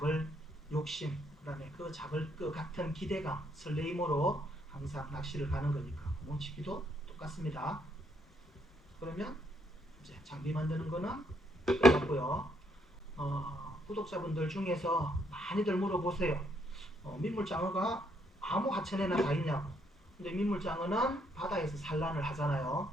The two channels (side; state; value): both; normal; correlation 0.72